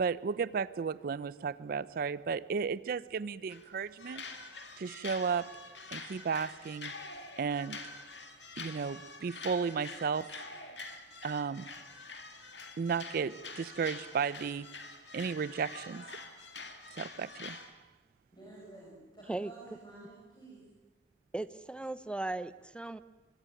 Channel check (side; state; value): left; quieter; 4.6 dB